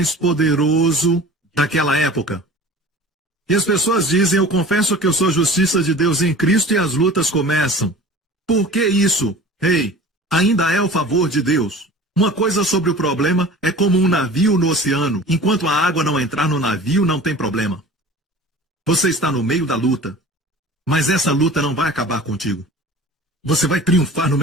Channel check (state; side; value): normal; both; correlation 0.41